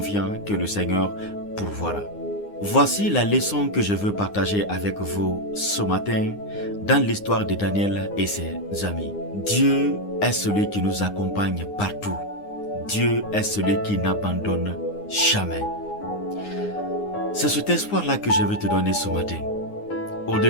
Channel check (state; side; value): late; right; 9.7 ms